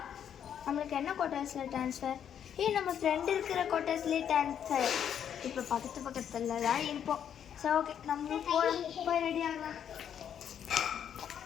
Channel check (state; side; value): quieter; right; 8.9 dB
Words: நம்மளுக்கு என்ன குவார்ட்டர்ஸில் ட்ரான்ஸ்ஃபர்? நம்ம ஃப்ரெண்டு இருக்கிற குவார்ட்டர்ஸ்லேயே ட்ரான்ஸ்ஃபர். இப்போ பக்கத்தில் தான் இருப்போம். சரி ஓகே நம்மளும் போய் ரெடி ஆகலாம்.